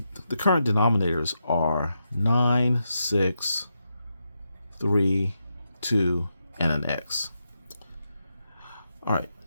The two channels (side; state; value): both; inverted; correlation -0.85